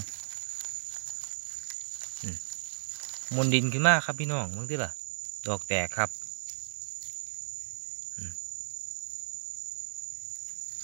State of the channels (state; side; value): silent; left; digital silence